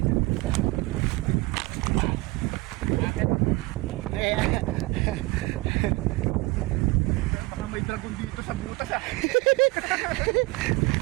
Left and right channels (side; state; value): left; quieter; 22.4 dB